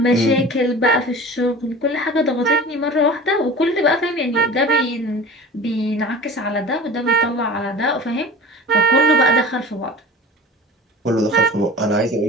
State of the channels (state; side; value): normal; both; correlation 0.38